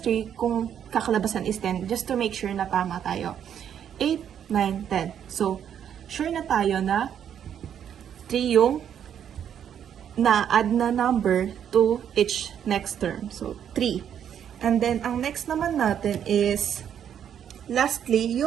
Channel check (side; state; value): left; quieter; 9.1 dB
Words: 3 kung kakalabasan is 10 just to make sure na tama tayo. 8, 9, 10. So, sure na tayo na 3 yung na-add na number to each next term. So, 3. And then, ang next naman natin is lastly,